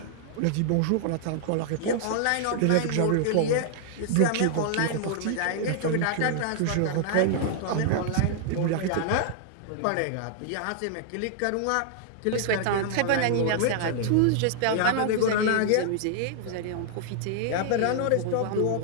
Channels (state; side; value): different; both; correlation -0.01